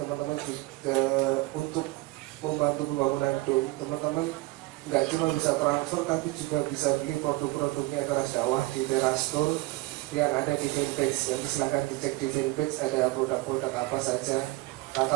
juga untuk membantu pembangunan dom, teman-teman nggak cuma bisa transfer, tapi juga bisa beli produk-produknya Teras Dakwah di Teras Store yang ada di fanpage. Jadi silahkan dicek di fanpage ada produk-produk apa saja.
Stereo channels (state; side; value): quieter; left; 21.3 dB